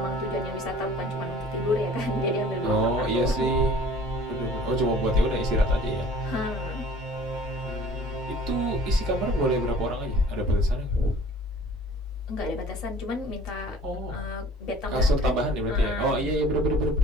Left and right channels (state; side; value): normal; both; correlation 0.49